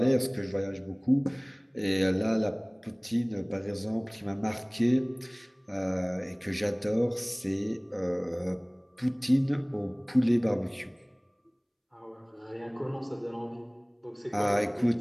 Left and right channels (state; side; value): identical; both; correlation 1.00